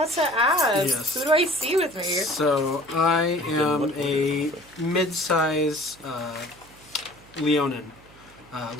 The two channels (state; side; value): noise; right; hum, 25 dB below the sound